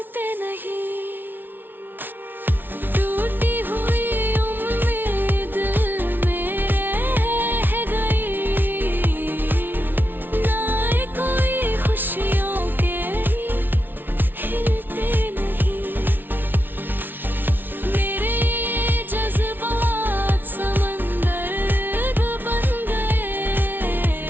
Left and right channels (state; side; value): late; left; 0.094 ms